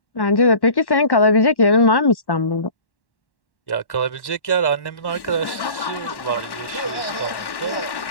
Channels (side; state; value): right; late; 1.1 ms